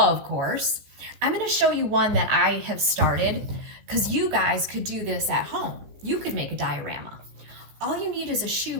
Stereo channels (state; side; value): late; left; 15 ms